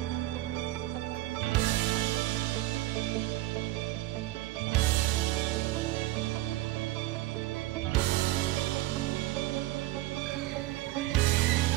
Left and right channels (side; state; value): left; quieter; 16.8 dB